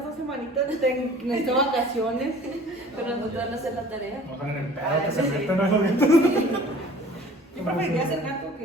2 semanitas, necesito vacaciones. Pero no te van a hacer la tarea. No están en el pedo, que Ah, se sí. meten a los gatos. Yo preferiría ser gato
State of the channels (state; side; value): normal; both; correlation 0.48